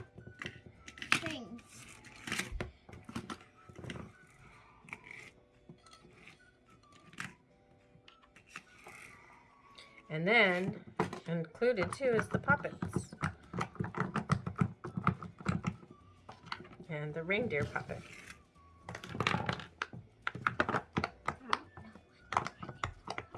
things. And then included too is the puppets. And the reindeer puppet.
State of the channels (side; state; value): both; identical; correlation 1.00